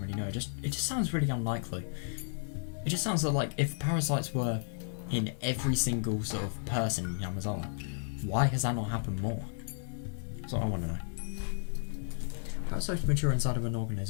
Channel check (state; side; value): silent; right; digital silence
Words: really know. It just sounds really unlikely. It just sounds like if parasites were in every single sort of person in Yamazawa, why has that not happened more? That's what I want to know. Parasites mature inside of an